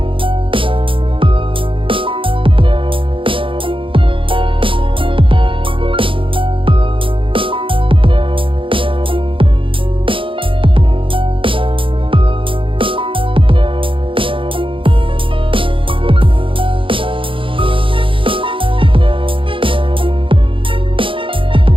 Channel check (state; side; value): late; left; 0.25 ms